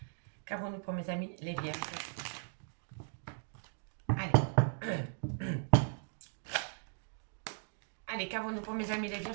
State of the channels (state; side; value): silent; left; digital silence